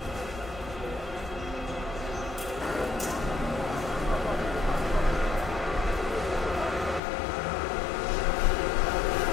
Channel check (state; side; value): drops out; right; at 7.0 s